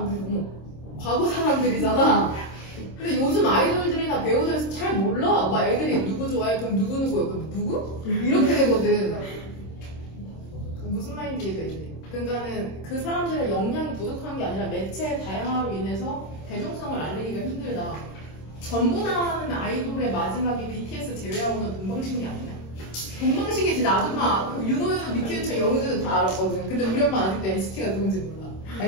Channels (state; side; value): late; right; 26 ms